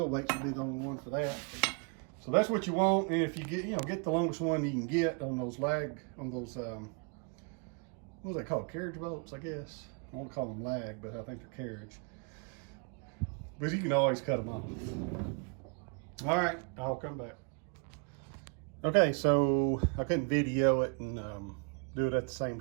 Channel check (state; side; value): quieter; left; 37.0 dB